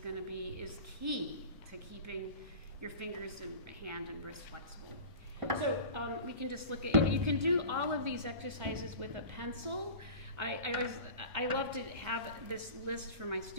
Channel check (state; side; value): late; left; 1.4 ms